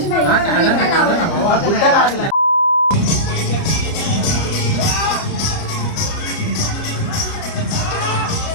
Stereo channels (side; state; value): right; late; 29 ms